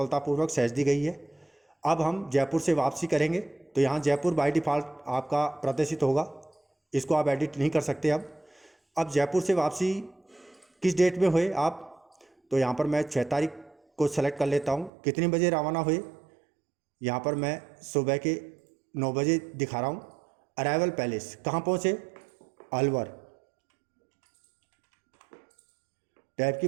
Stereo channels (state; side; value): drops out; left; at 14.9 s